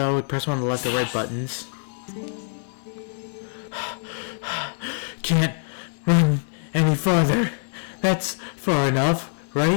press one of the left or right buttons. Can't run any farther. That's far enough,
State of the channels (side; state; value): right; silent; digital silence